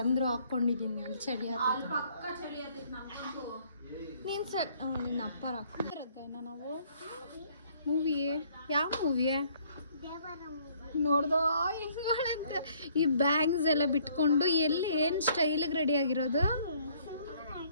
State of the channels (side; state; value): both; inverted; correlation -0.63